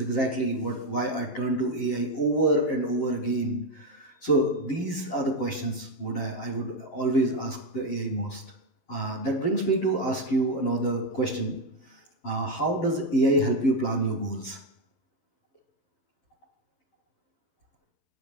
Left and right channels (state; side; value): late; right; 12 ms